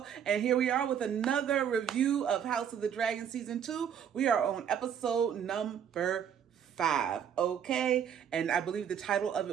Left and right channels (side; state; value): left; quieter; 8.5 dB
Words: and here we are with another review of House of the Dragon Season 2. We are on episode number 5, okay? And I believe the title of